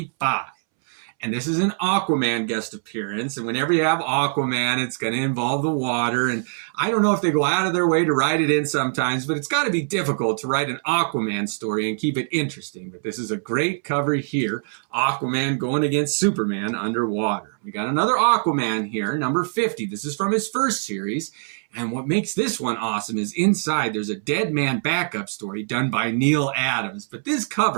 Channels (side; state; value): left; silent; 63 dB below the other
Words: And this is an Aquaman guest appearance. And whenever you have Aquaman, it's going to involve the water. And I don't know if they go out of their way to write it in sometimes, but it's got to be difficult to write an Aquaman story and keep it interesting. But this is a great cover here. Aquaman going against Superman underwater. We got another Aquaman here, number 50. This is from his first series. And what makes this one awesome is inside there's a Dead Man backup story done by Neil Adams. But this